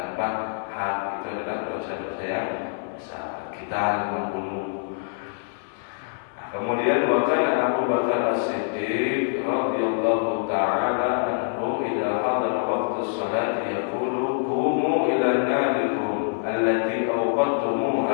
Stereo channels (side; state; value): right; silent; 59 dB below the other